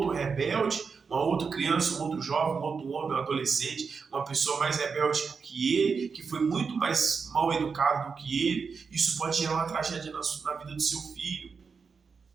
rebelde, uma outra criança, um outro jovem, um outro homem, um adolescente, uma pessoa mais rebelde que ele, que foi muito mais mal educado do que ele. Isso pode gerar uma tragédia na vida do seu filho.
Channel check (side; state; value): left; quieter; 5.4 dB